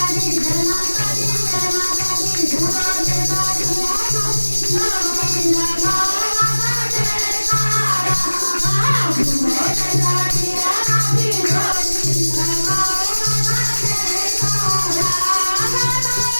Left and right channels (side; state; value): both; inverted; correlation -1.00